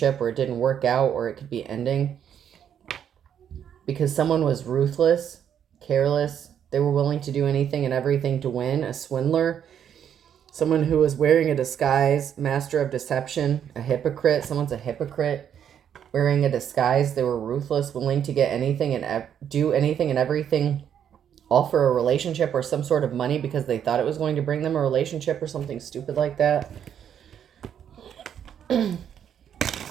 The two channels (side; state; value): left; quieter; 8.9 dB